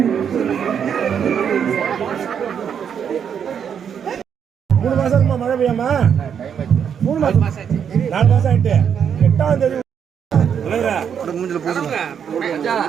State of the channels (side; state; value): left; quieter; 7.9 dB